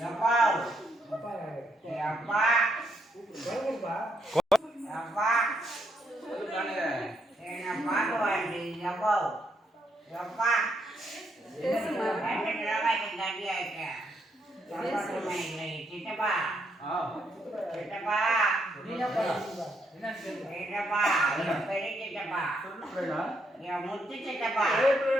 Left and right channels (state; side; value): normal; both; correlation 0.76